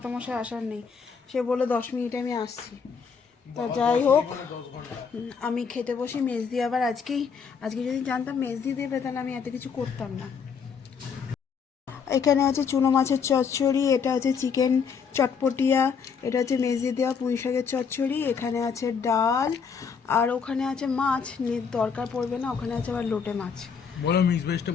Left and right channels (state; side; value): quieter; right; 6.2 dB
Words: মশাই আসার নেই। সে বললো 10 মিনিটে আমি আসছি। তা যাই হোক, 10 ঘন্টা। আমি খেতে বসি। মেজদি আবার আজকে যদি জানতাম মেজদি দেবে তাহলে আমি এত কিছু করতাম না। এখানে আছে চুনো মাছের চচ্চড়ি, এটা আছে চিকেন চটপটিয়া, এটা হচ্ছে মেজদি দেওয়া পুঁই শাকের চচ্চড়ি, এখানে আছে ডাল, আর ওখানে আছে মাছ, দরকার পড়বে না, ওখানে আছে আবার লোটে মাছ। বলো মিক্স ভেজটা